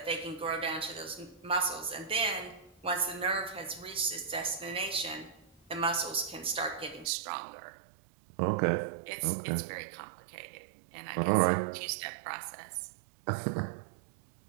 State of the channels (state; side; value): drops out; left; at 7.1 s